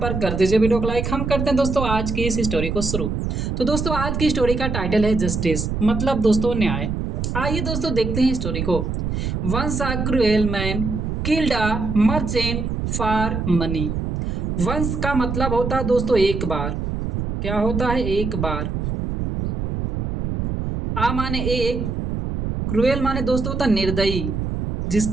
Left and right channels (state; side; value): noise; right; rumble, 2 dB below the sound